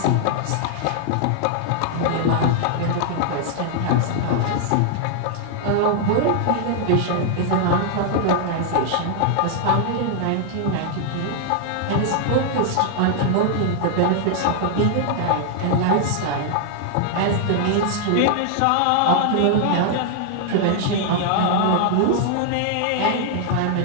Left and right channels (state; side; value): different; both; correlation 0.00